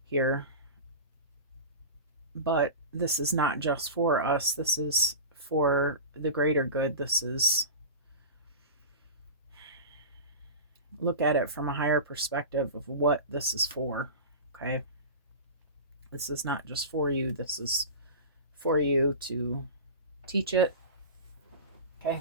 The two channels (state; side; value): inverted; both; correlation -0.30